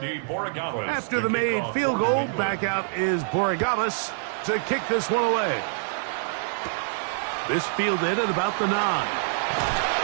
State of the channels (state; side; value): silent; left; digital silence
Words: Borregales. After the made field goal, back out is Borregales to kick this one away. This fielded at about the 9.